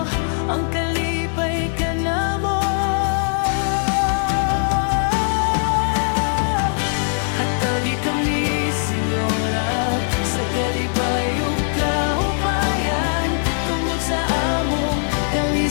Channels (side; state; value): right; silent; 64 dB below the other